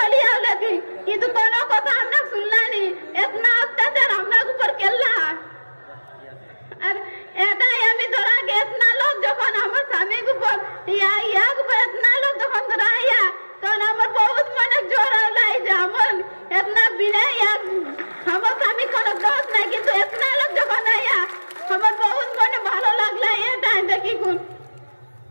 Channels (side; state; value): both; inverted; correlation -1.00